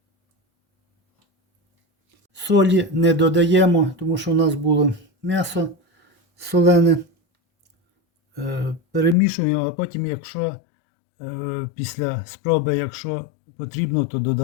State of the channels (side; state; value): right; drops out; at 9.2 s